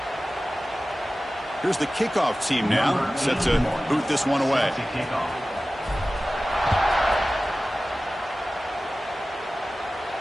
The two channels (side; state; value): both; normal; correlation 0.96